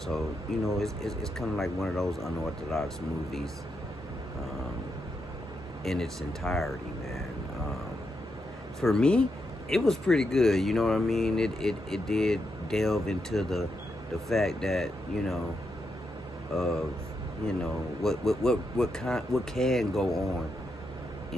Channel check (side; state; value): both; normal; correlation 0.83